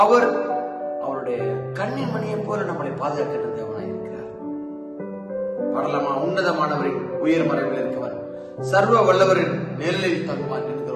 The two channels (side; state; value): both; identical; correlation 1.00